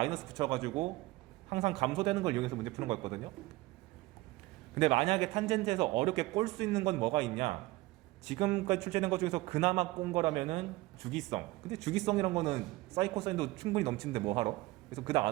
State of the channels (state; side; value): quieter; left; 19.6 dB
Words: 붙여가지고 항상 감소되는 걸 이용해서 문제 푸는 거였거든요. 근데 만약에 탄젠트에서 어렵게 꼴 수 있는 건 뭐가 있냐? 지금까지 출제된 것 중에서 그나마 꼰 거라면은 주기성. 근데 주기성이란 거는 사인 코사인도 충분히 넘치는데 뭐 하러? 그래서 그닥